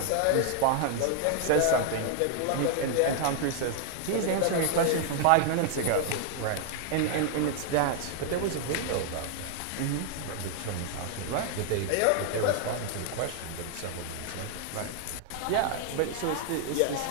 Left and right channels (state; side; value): different; both; correlation 0.00